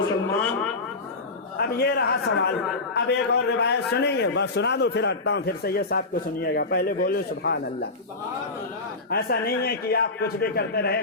अब ये रहा सवाल। अब एक और रिवायत सुनेंगे, बस सुना दो फिर हटता हूँ, फिर सैयद साहब को सुनिएगा। पहले बोलो सुभान अल्लाह। ऐसा नहीं है कि आप कुछ भी करते रहे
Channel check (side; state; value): right; quieter; 3.4 dB